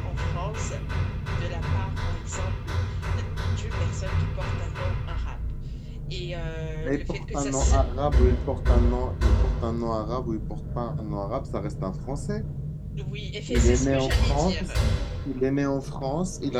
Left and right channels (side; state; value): both; identical; correlation 1.00